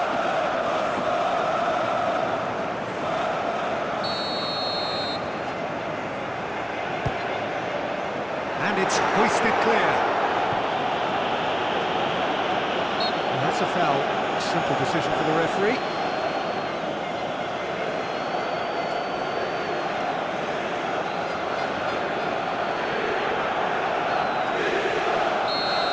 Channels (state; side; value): identical; both; correlation 1.00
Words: And it's hoisted clear. And that's a foul. A simple decision for the referee.